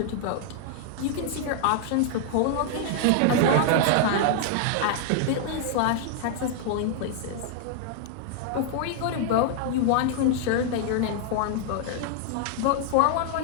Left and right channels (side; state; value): both; different; correlation 0.00